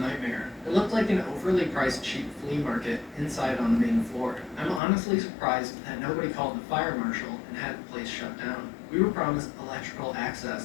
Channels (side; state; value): right; drops out; at 4.8 s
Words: It looked like an overly priced cheap flea market inside on the main floor. I'm honestly surprised that nobody called the fire marshal and had the place shut down. We were promised electrical